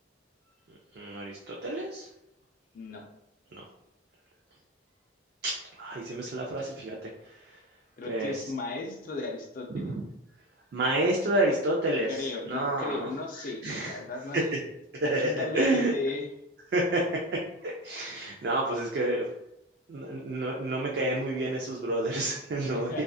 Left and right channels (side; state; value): both; normal; correlation 0.22